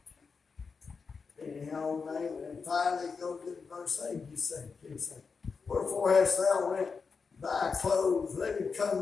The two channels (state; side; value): quieter; right; 5.1 dB